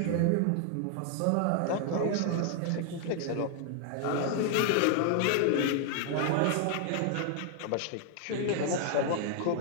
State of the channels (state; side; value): different; both; correlation 0.00